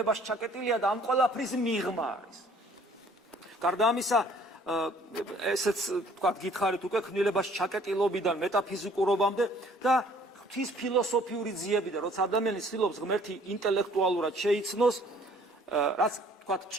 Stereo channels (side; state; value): both; normal; correlation 0.57